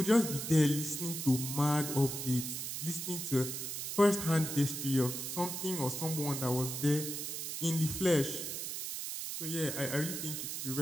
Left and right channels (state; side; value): noise; right; hiss, 5 dB below the sound